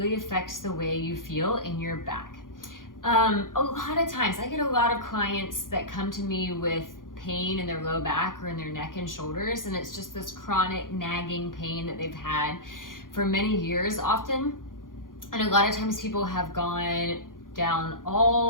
affects the way you feel in your back. A lot of times I get a lot of clients that come to me with pain in their low back or in their neck and shoulders, and it's just this chronic nagging pain that they've had for many years often. And a lot of times people have gone down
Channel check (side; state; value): right; late; 0.90 ms